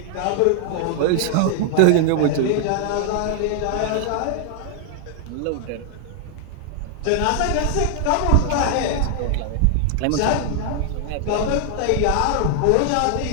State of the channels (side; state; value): both; different; correlation 0.00